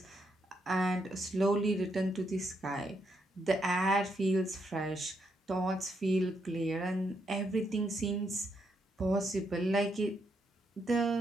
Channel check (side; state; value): both; normal; correlation 0.78